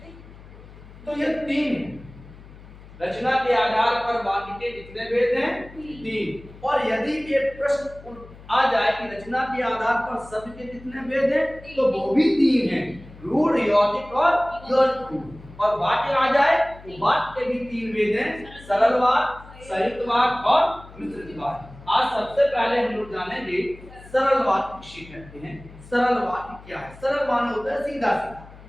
तो ये 3 है। रचना के आधार पर वाक्य के कितने भेद हैं? 3। और यदि ये प्रश्न आ जाए कि रचना के आधार पर शब्द के कितने भेद हैं, तो वो भी 3 हैं, रूढ़, यौगिक और यौगिक। और वाक्य आ जाए तो वाक्य के भी 3 भेद हैं, सरल वाक्य, संयुक्त वाक्य और मिश्रित वाक्य। आज सबसे पहले हम लोग जानेंगे सरल वाक्य किसे कहते हैं। सरल वाक्य क्या है? सरल माने होता है सीधा सीधा।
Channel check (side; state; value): left; noise; hum, 19 dB below the sound